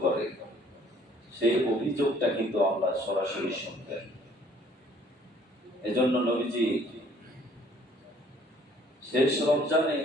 করে, সেই অভিযোগটা কিন্তু আল্লাহ সরাসরি শুনবেন। এজন্য নবীজি শেষ রমজানে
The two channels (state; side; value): normal; both; correlation 0.58